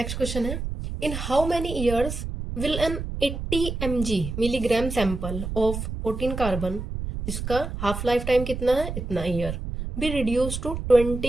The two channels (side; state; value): right; noise; rumble, 6 dB below the sound